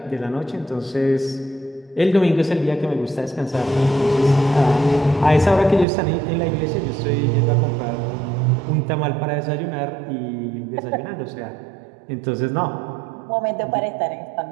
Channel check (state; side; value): drops out; left; at 5.9 s